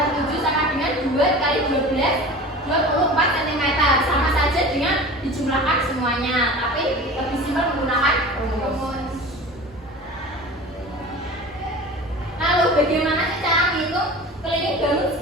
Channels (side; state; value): both; normal; correlation 0.37